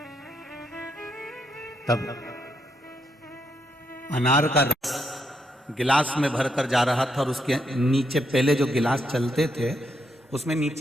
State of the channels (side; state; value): both; normal; correlation 0.79